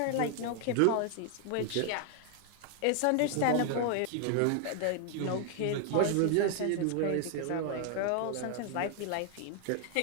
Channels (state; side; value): different; both; correlation 0.00